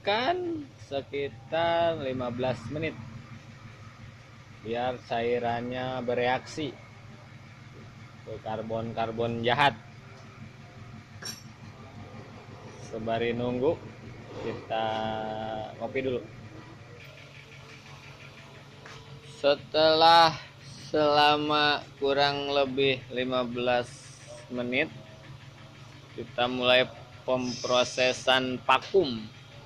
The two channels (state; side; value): identical; both; correlation 1.00